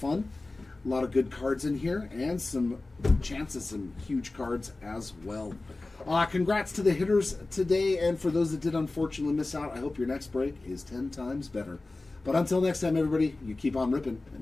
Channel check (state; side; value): quieter; right; 3.2 dB